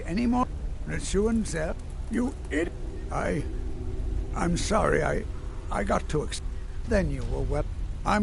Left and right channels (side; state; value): both; identical; correlation 1.00